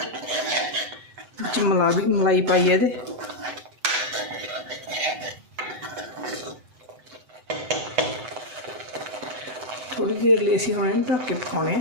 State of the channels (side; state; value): left; late; 7.9 ms